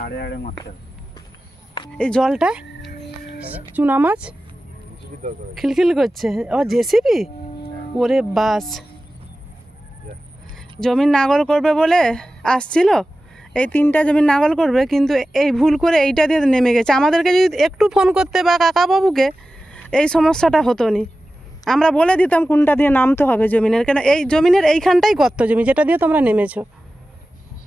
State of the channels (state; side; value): normal; both; correlation 0.95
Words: এই জলটা চুনা মাছ খিলখিল করছে। ও জেসিবি, ওরে বাস। জমির নাগল করবে বলে আসছিল, এই 3টা জমির নাগল করবে, কিন্তু এই ভুল করে এইটা দিয়ে নেমে গেছে। আমাদেরকে যদি একটু ফোন করতে বা কাকাবাবুকে, এই সমস্যাটা হতো নি। আমরা বলে দিতাম কোনটা দিয়ে নামতে হবে জমিনের, কেন এই জমিনের এইখানটাই গর্ত জমি যেটা দিয়ে তোমরা নেমেছো।